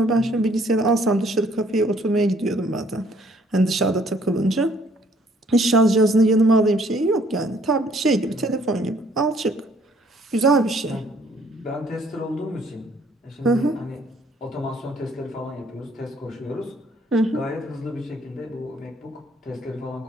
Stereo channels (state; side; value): normal; both; correlation 0.62